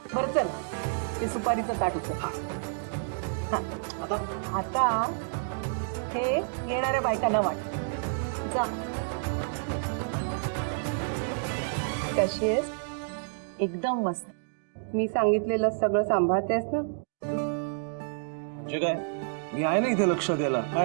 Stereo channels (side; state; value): left; silent; digital silence